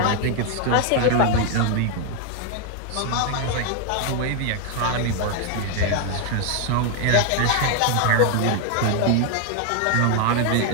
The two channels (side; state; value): both; different; correlation 0.01